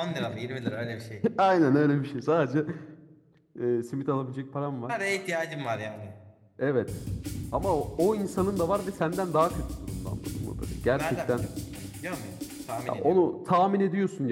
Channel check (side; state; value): both; identical; correlation 1.00